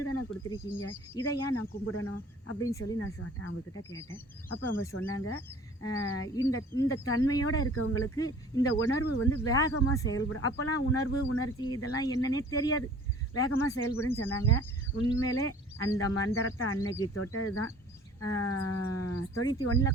தானே கொடுத்துருக்கீங்க, இதை ஏன் நான் கும்பிடணும் அப்படின்னு சொல்லி நான் அவங்கக்கிட்ட கேட்டேன். அப்போ அவங்க சொன்னாங்க, இந்த இந்த தன்மையோடு இருக்கவங்களுக்கு இந்த உணர்வு வந்து வேகமாக செயல்படும். அப்போல்லாம் உணர்வு உணர்ச்சி இதெல்லாம் என்னன்னே தெரியாது, வேகமாக செயல்படுன்னு சொன்னாங்க. உண்மையிலே அந்த மந்திரத்தை அன்னைக்கு தொட்டது தான்.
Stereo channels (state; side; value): normal; both; correlation 0.48